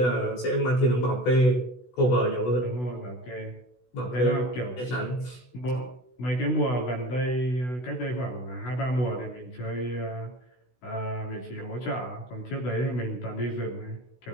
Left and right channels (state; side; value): late; right; 16 ms